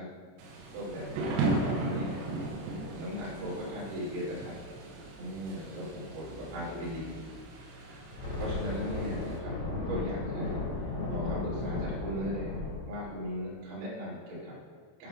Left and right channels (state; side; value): late; left; 31 ms